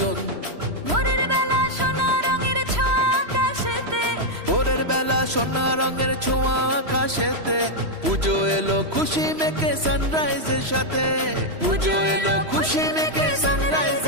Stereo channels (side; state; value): left; late; 3.0 ms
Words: ভোরের বেলা সোনা রঙের ছোঁয়া আকাশেতে, ভোরের বেলা সোনা রঙের ছোঁয়া আকাশেতে, পুজো এলো খুশি মেখে সানরাইজের সাথে, পুজো এলো খুশি মেখে